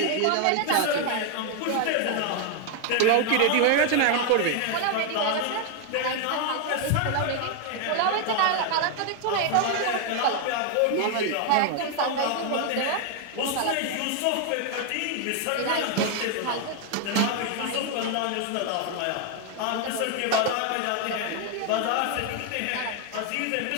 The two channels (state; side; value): different; both; correlation 0.00